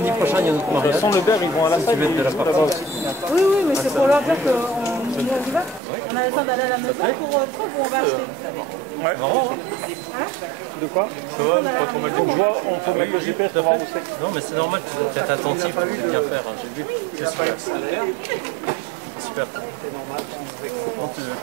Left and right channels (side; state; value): left; drops out; at 5.8 s